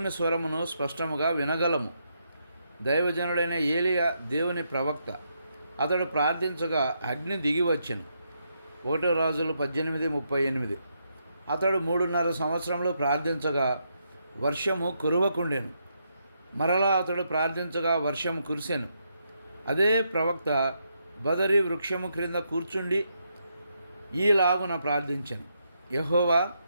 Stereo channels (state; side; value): inverted; both; correlation -0.79